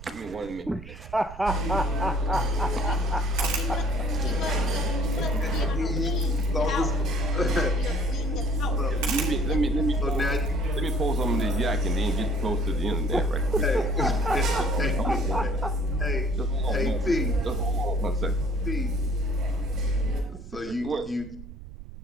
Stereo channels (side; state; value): right; noise; rumble, 15 dB below the sound